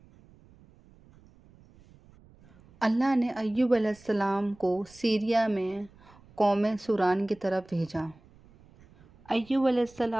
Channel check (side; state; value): right; noise; rumble, 27 dB below the sound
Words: اللہ نے ایوب علیہ السلام کو سیریا میں قوم سوران کی طرف بھیجا۔ ایوب علیہ